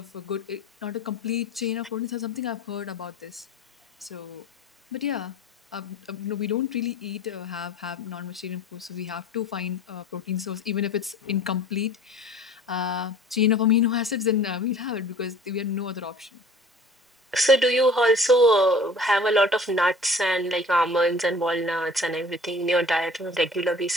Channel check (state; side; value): normal; both; correlation 0.46